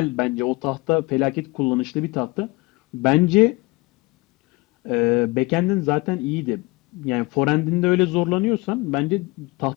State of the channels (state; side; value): quieter; right; 24.2 dB